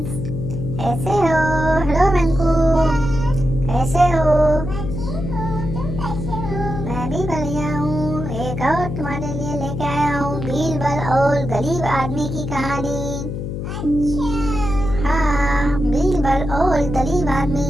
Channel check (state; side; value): noise; left; hum, 5 dB below the sound